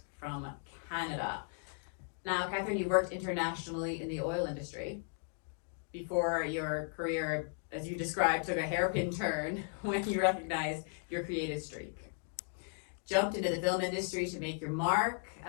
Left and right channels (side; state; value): right; silent; 54 dB below the other